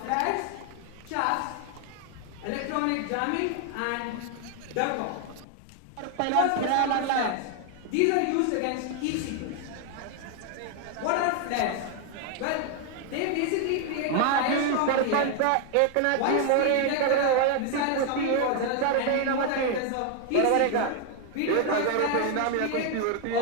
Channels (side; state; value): both; different; correlation 0.01